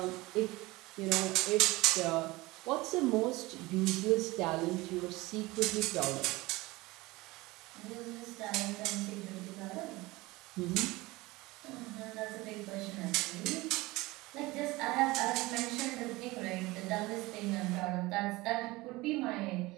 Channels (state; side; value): quieter; left; 21.1 dB